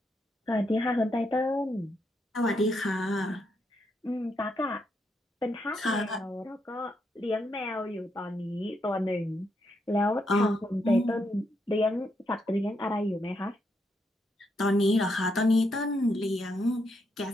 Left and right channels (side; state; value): both; normal; correlation 0.79